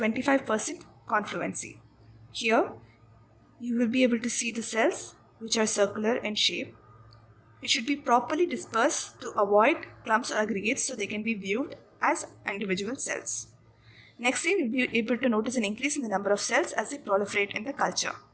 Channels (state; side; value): identical; both; correlation 1.00